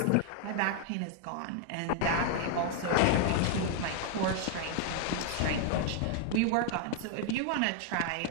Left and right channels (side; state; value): both; different; correlation 0.00